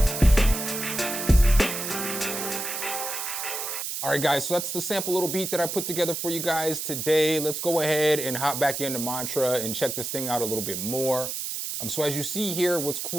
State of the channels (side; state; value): right; noise; hiss, 4 dB below the sound